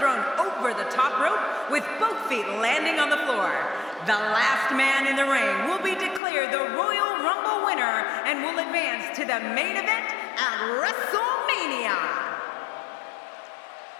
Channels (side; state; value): right; drops out; at 6.2 s